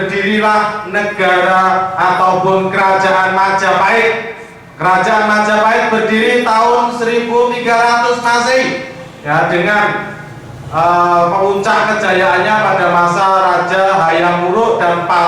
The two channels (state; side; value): identical; both; correlation 1.00